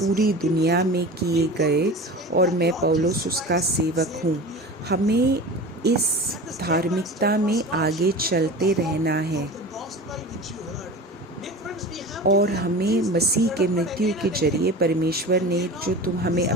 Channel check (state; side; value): normal; both; correlation 0.34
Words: दुनिया में किए गए और मैं पौलुस उसका सेवक हूँ। हमें इस धार्मिकता में आगे चलते रहना है और हमें मसीह के मृत्यु के जरिए परमेश्वर ने जो हमें